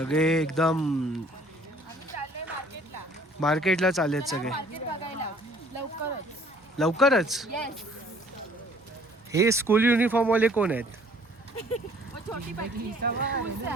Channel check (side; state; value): both; normal; correlation 0.57